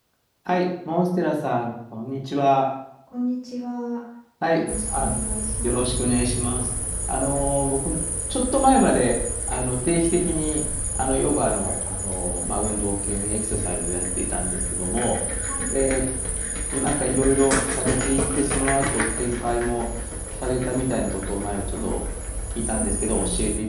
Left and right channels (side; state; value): both; identical; correlation 1.00